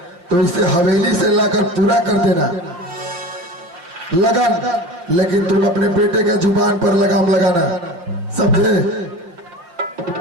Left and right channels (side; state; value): left; late; 5.9 ms